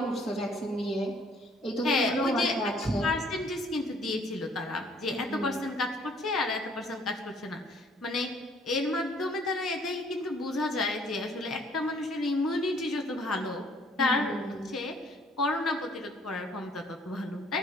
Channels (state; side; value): normal; both; correlation 0.60